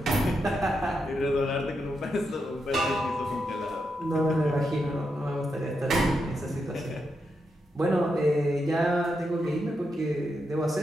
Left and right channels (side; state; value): both; normal; correlation 0.84